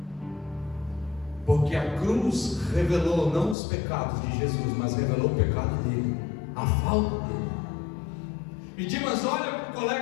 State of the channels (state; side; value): drops out; right; at 3.6 s